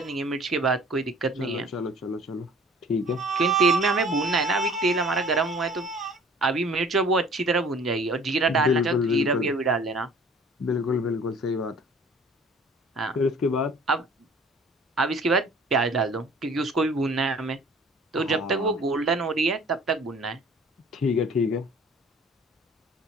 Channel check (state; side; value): normal; both; correlation 0.50